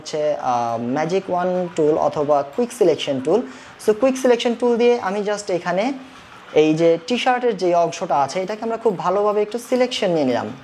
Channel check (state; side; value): identical; both; correlation 1.00